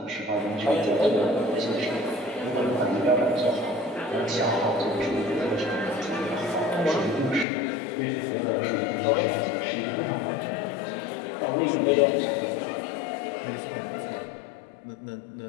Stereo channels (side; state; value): right; drops out; at 7.5 s